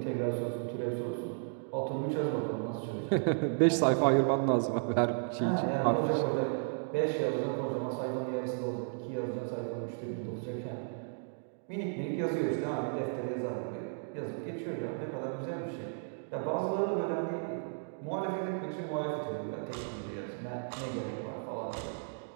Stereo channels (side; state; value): left; silent; digital silence